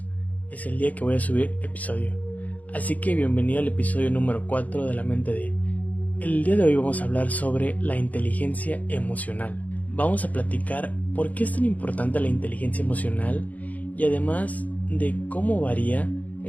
es el día que voy a subir episodio. Así que bienvenido al episodio número 4 de La Mente de. El día de hoy vamos a hablar sobre la inteligencia emocional. Vamos a platicar por qué es tan importante la inteligencia emocional y además de cómo varía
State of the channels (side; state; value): right; late; 0.075 ms